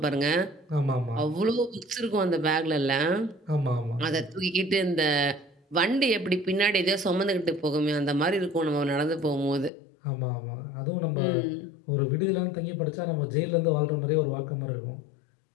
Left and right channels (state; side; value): drops out; right; at 9.7 s